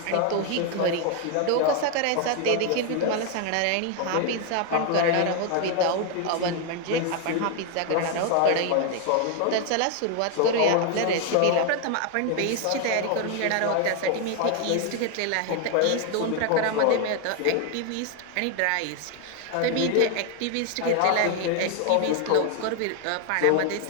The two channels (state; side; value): different; both; correlation 0.01